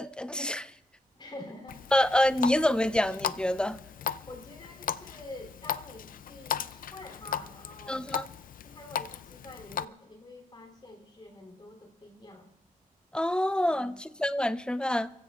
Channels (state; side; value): normal; both; correlation 0.78